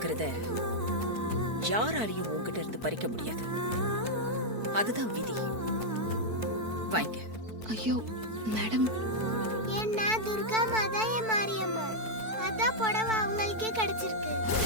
யாராலையும் உன்கிட்ட இருந்து பறிக்க முடியாது. அதுதான் விதி. வாங்க. ஐயோ மேடம், என்ன துர்கா மாதா என் மாரியம்மா, அதான் புடவை அவங்களுக்கே கிடைச்சிருக்கு.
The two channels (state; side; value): late; left; 4.5 ms